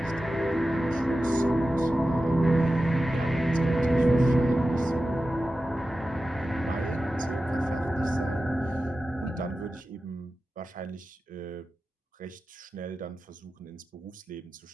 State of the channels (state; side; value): normal; both; correlation 0.93